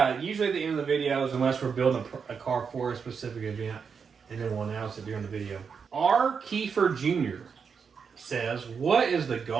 usually at the end of the videos, unless we're building a car for a specific event, and then we'll announce it during the video. R. Kiefer Jr. says, what is the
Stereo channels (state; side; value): quieter; left; 6.1 dB